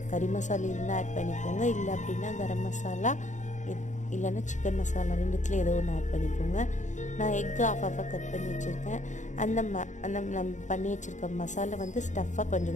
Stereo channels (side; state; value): right; late; 0.35 ms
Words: கறி மசாலா இருந்தால் ஆட் பண்ணிக்கோங்க, இல்லை அப்படின்னா கரம் மசாலா இல்லைன்னா சிக்கன் மசாலா ரெண்டுத்துல ஏதோ ஒன்று ஆட் பண்ணிக்கோங்க. நான் எக்கு ஆஃபாக கட் பண்ணி வச்சுருக்கேன். அந்த நம்ம பண்ணி வச்சுருக்க மசாலா வந்து ஸ்டஃப்பாக